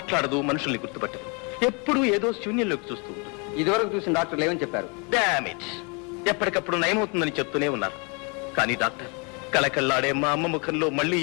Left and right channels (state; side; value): quieter; right; 33.2 dB